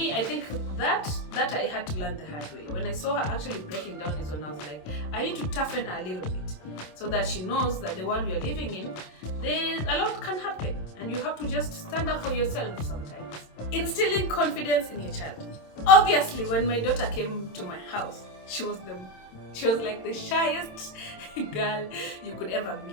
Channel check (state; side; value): late; right; 27 ms